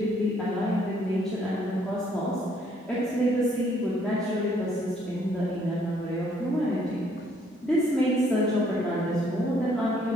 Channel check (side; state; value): both; normal; correlation 0.66